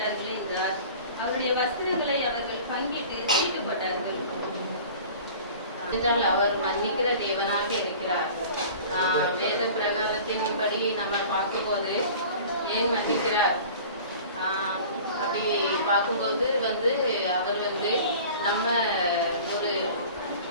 என்றார். அவருடைய வஸ்திரங்களை அவர்கள் பங்கிட்டு தீட்டு போட்டார்கள். என்றால் அவர் மன்னிக்கிற தேவனாக இருக்கிறார். வேத பிரகாரத்தின்படி நம்ம பார்க்கும்போது ஏன் மன்னிக்கிறார் அப்படி பார்க்கும்போது அவர் நம்ம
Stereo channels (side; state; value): both; inverted; correlation -0.42